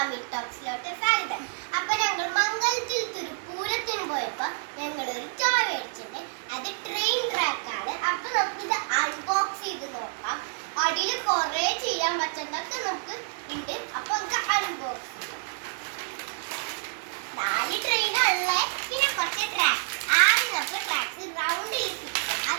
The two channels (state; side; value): silent; left; digital silence